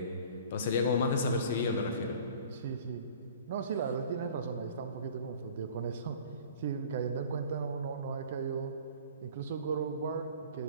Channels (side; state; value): both; inverted; correlation -0.46